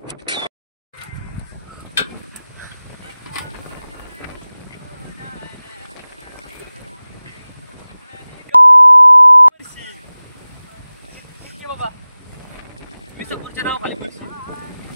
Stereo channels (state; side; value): inverted; both; correlation -0.98